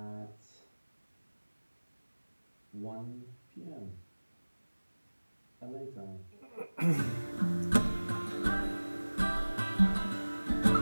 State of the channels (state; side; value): inverted; both; correlation -1.00